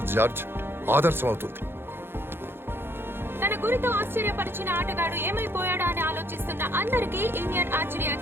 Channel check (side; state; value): left; late; 0.11 ms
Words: జార్జ్, ఆదర్శం అవుతుంది. తన గురితో ఆశ్చర్యపరిచిన ఆటగాడు ఏమైపోయాడా అని ఆలోచిస్తున్న అందరికీ ఇండియన్ ఆర్చరీ